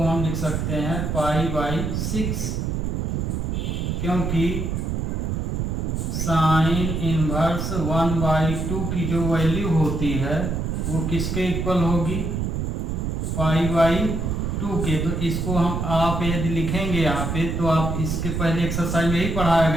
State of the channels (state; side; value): noise; right; rumble, 1 dB below the sound